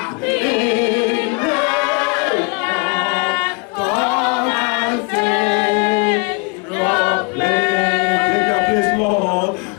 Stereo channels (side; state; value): right; quieter; 31.8 dB